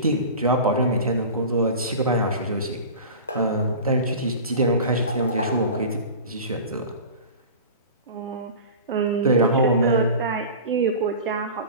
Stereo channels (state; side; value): inverted; both; correlation -0.35